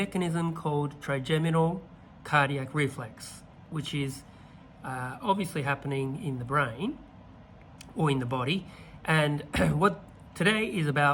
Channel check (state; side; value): identical; both; correlation 1.00